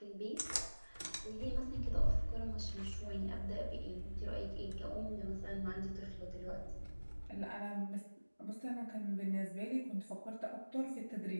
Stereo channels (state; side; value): inverted; both; correlation -1.00